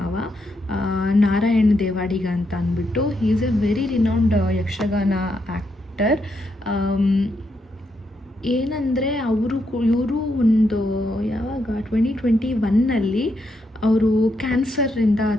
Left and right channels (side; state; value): both; normal; correlation 0.80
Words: ನಾರಾಯಣ್ ದೇವಾಡಿಗ ಅಂತ ಅಂದ್ಬಿಟ್ಟು. He is A very renowned Yakshagana actor. ಏನಂದರೆ ಇವರು ಒಂದು ಯಾವಾಗ 2021 ಅವರು ಕ್ಯಾನ್ಸರಿಂದ